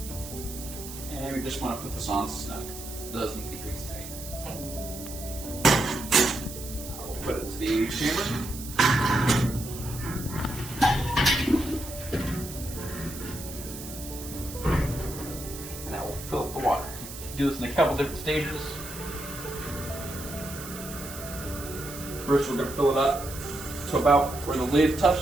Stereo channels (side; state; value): right; noise; hiss, 11 dB below the sound